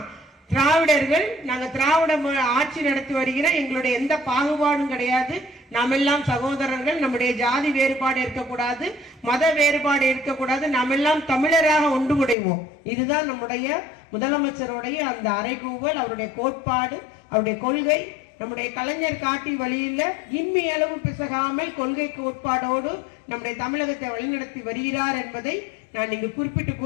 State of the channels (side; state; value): right; drops out; at 12.4 s